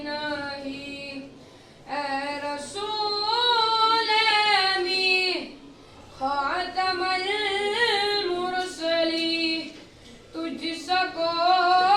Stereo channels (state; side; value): identical; both; correlation 1.00